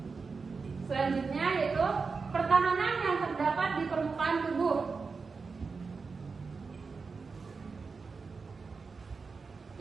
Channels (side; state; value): left; quieter; 4.7 dB